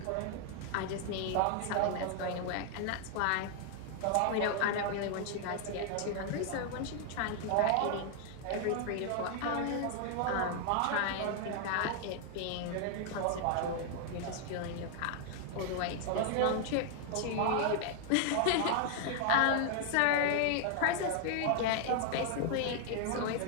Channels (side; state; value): both; different; correlation 0.00